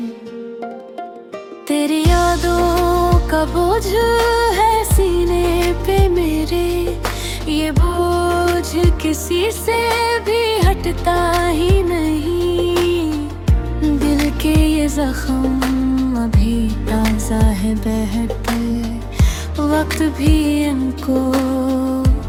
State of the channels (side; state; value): both; identical; correlation 1.00